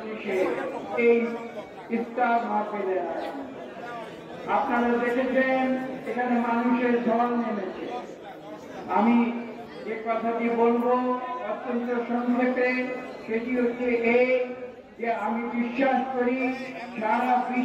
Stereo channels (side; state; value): both; identical; correlation 1.00